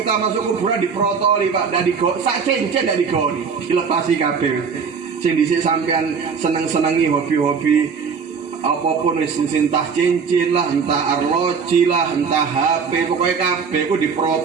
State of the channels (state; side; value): quieter; left; 5.9 dB